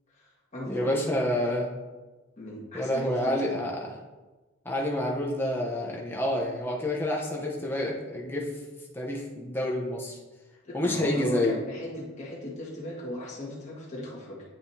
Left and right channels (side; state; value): both; normal; correlation 0.56